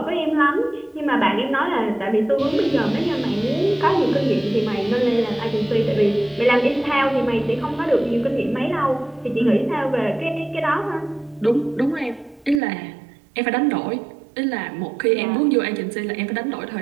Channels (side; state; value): left; drops out; at 12.6 s